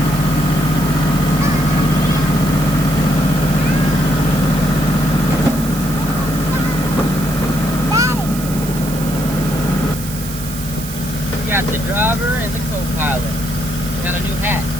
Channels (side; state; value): right; noise; hiss, 11 dB below the sound